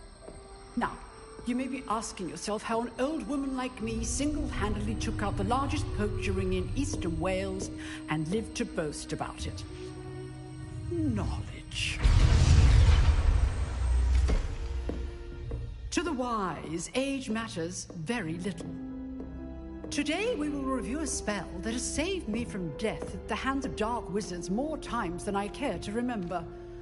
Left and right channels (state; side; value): identical; both; correlation 1.00